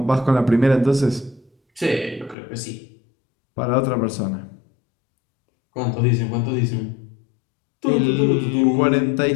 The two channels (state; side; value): drops out; right; at 2.4 s